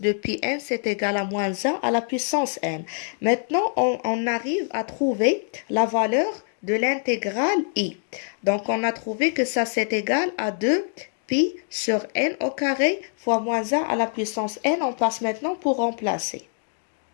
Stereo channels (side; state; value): right; silent; 62 dB below the other